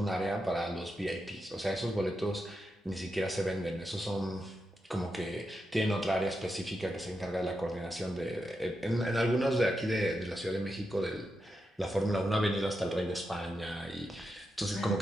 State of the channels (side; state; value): both; normal; correlation 0.86